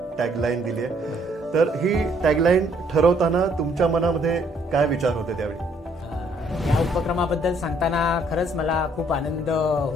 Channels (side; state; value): both; normal; correlation 0.66